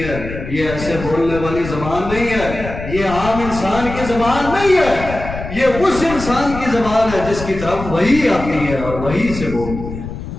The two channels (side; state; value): left; noise; rumble, 9 dB below the sound